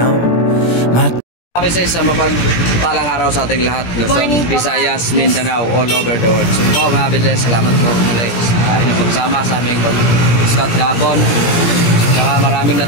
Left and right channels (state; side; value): late; right; 17 ms